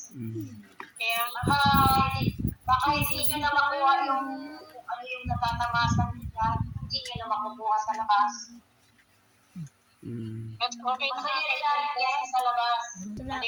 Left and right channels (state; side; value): identical; both; correlation 1.00